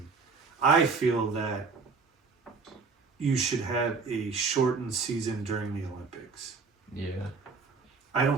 I feel that you should have a shortened season during the Olympics. Yeah. I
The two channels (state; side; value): quieter; left; 4.8 dB